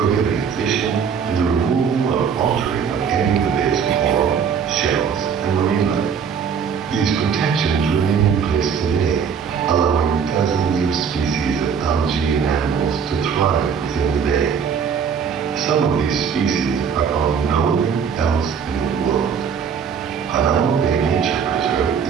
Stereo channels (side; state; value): left; quieter; 6.9 dB